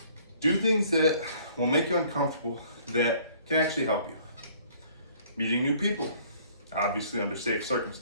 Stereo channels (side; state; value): both; inverted; correlation -0.57